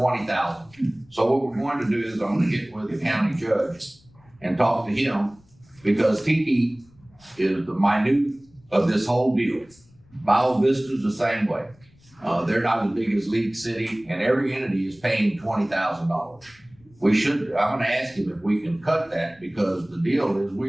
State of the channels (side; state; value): left; noise; rumble, 29 dB below the sound